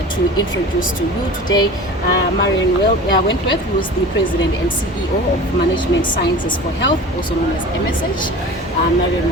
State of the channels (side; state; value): both; normal; correlation 0.37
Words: to introduce to you today Marion Wentworth, who is the President and CEO of Management Sciences for Health, also known as MSH. Marion,